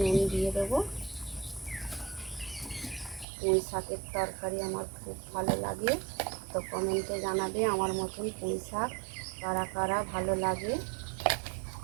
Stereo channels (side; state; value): left; drops out; at 3.2 s